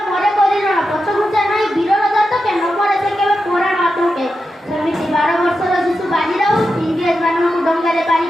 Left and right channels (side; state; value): both; normal; correlation 0.89